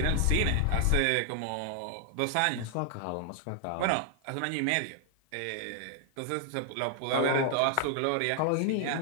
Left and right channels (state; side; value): different; both; correlation 0.00